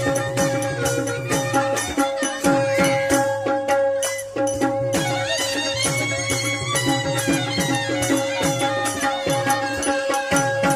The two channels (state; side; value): identical; both; correlation 1.00